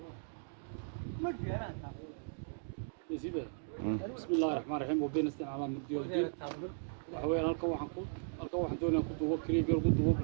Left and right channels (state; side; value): silent; left; digital silence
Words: بسم الله الرحمن الرحيم وبين استعان على مدير الدين وحوي halkan waxaan doonayaa ku duubo kaliya ku duubo